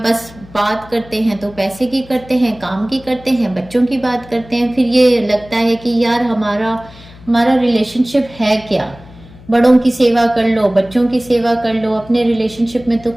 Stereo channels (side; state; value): left; noise; hum, 21 dB below the sound